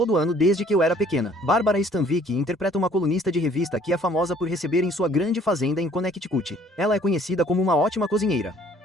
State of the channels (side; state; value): both; normal; correlation 0.58